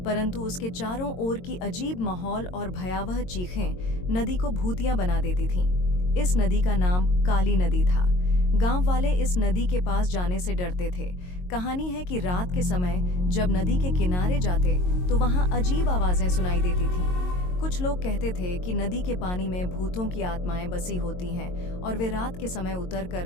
परंतु उसके चारों ओर की अजीब माहौल और भयावह चीखें नदी को भूतिया बना देती थीं। इस नदी का नाम काली नदी था। गांव वाले इस नदी के पास जाने से डरते थे। कहानी है कि रात के समय जब नदी के किनारे जाते तो वहां अजीब आवाजें सुनाई देती थीं। कुछ लोग कहते थे कि नदी के पानी में भूतों की आत्माएं बसी होती हैं और वे रात के समय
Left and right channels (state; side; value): late; right; 22 ms